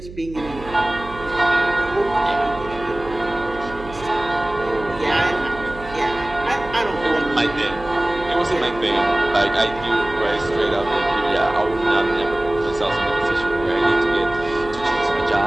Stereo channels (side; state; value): right; noise; hum, 15 dB below the sound